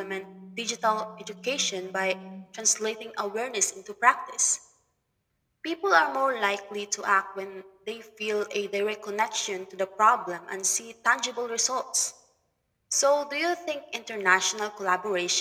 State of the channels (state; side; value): identical; both; correlation 1.00